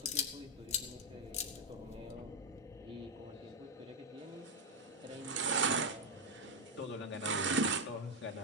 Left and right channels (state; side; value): normal; both; correlation 0.03